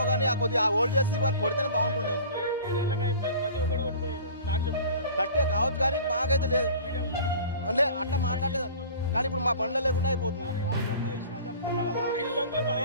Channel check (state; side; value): inverted; both; correlation -0.43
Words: కానీ ఆ కొద్దిగా హోల్డ్ చేసి వారు కొడితేనే బాగుంటుండేమో. కట్టే కావచ్చు కానీ మాకైతే లేదు అంటే అట్లా మాట్లాడలేదండి. కానీ ఇప్పుడు మా బండ్ల లేకుండా అయిపోతుంది.